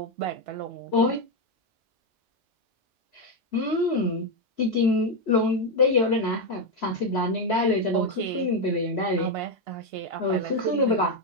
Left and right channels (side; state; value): both; normal; correlation 0.05